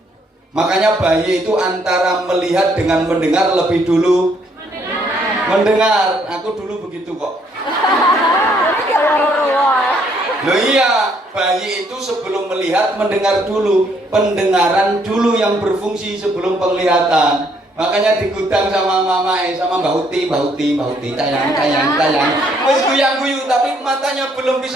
Makanya bayi itu antara melihat dengan mendengar lebih dulu mendengar. Aku dulu begitu kok. Loh iya, bayi itu sebelum melihat mendengar dulu. Pendengaran dulu yang berfungsi sebelum penglihatan. Makanya di gudang sama mama sama Mbak Uti, tayang. Wes guyang-guyu tapi matanya belum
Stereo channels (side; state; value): both; normal; correlation 0.68